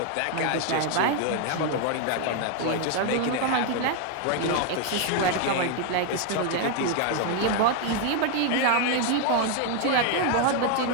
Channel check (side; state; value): both; different; correlation 0.01